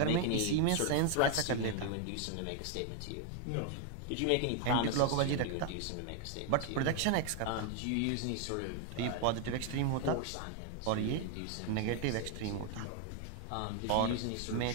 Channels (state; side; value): different; both; correlation 0.01